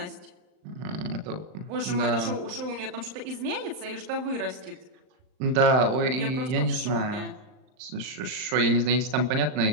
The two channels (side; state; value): left; late; 39 ms